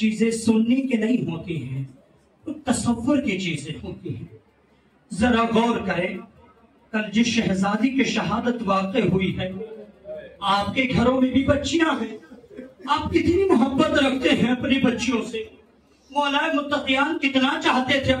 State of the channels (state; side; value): identical; both; correlation 1.00